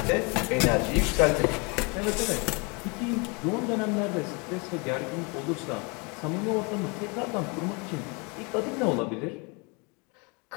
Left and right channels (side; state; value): right; quieter; 30.7 dB